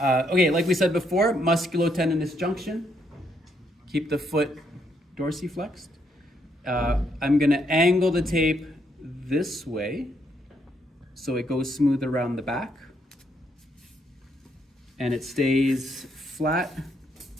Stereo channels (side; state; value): both; normal; correlation 0.74